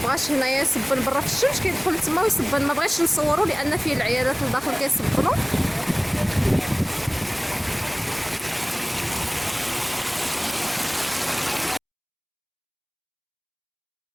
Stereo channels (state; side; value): identical; both; correlation 1.00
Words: هنايا يصبن برا في الشمس كيدخل تما ويصبن، ما بغيتش نصوروا لان فيه العيالات الداخل كيصبنوا.